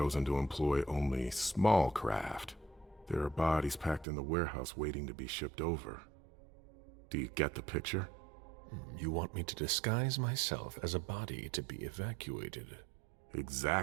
to employ only small craft. There are bodies packed in the warehouse waiting to be shipped over. Do you get the picture? You want me to disguise myself as a body to be evacuated?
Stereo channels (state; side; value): drops out; left; at 4.0 s